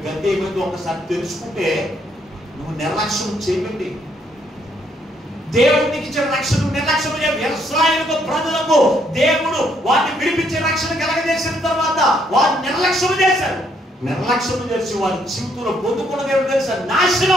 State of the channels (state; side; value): normal; both; correlation 0.71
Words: గతి ఏమైందో ఒకసారి తెలుసుకుంటే నువ్వు నిర్లక్ష్యం చేయకండి. దేవుడికి ఇచ్చిన రక్షణ నిర్లక్ష్యం ఇశ్రాయేలు ప్రజలకు దేవుడు వారిని విడిపించే రక్షణ కలగజేసిన తర్వాత వారు నిర్లక్ష్యం చేశారు. నిర్లక్ష్యం చేసి వారి జీవితంలో పొందుకున్నది ఏమిటో తెలుసా?